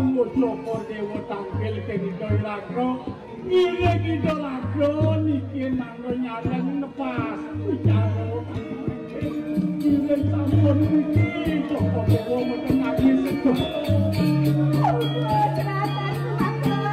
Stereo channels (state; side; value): identical; both; correlation 1.00